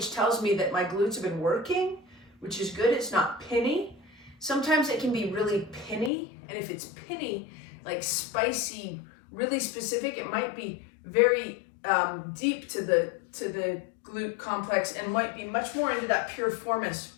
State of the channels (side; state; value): right; drops out; at 6.1 s